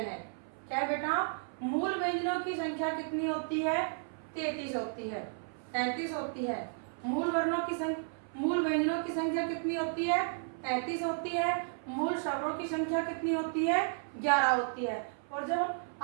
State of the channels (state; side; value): silent; left; 56 dB below the other